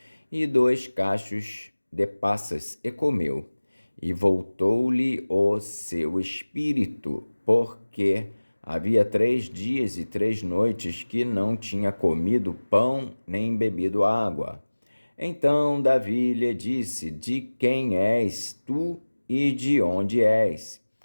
e 2 cachos de passas, e comeu. E voltou-lhe o seu espírito, porque havia 3 dias e 3 noites que não tinha comido pão nem bebido água. Então Davi lhe disse: De quem és tu e de onde és?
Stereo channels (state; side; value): inverted; both; correlation -1.00